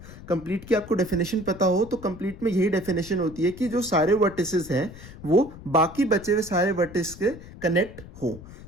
कंप्लीट की आपको डेफिनेशन पता हो तो कंप्लीट में यही डेफिनेशन होती है कि जो सारे वर्टिसेस हैं वो बाकी बचे हुए सारे वर्टेक्स के कनेक्ट हो।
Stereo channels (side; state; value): left; noise; rumble, 16 dB below the sound